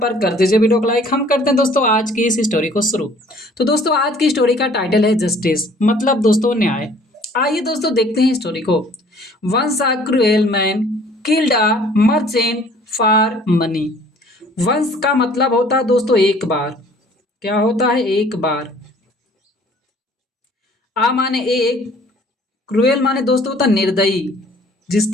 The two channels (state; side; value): normal; both; correlation 0.55